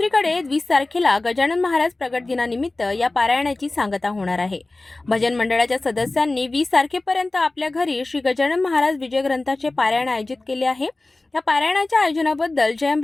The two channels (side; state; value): right; quieter; 3.0 dB